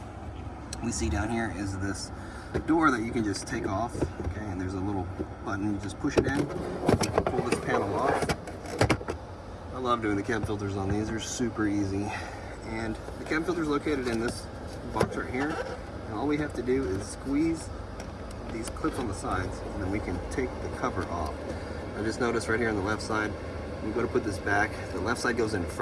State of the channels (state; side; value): identical; both; correlation 1.00